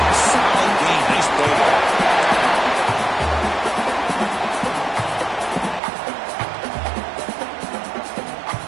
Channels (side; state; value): left; drops out; at 5.8 s